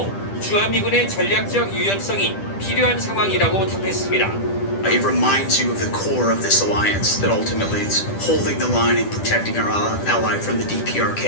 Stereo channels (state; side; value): late; right; 10 ms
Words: 주한미군의 전략적 유연성이 필요한 상황이라고 답했습니다. It reminds you of the core of this alliance, that ultimately it's holding the line and protecting our ally from the